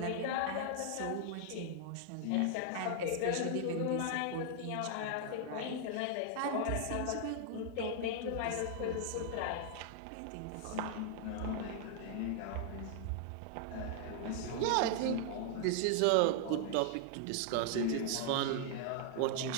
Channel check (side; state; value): both; different; correlation -0.01